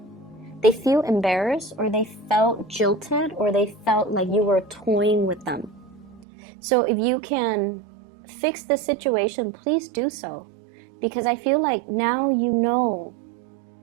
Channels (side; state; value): left; drops out; at 6.2 s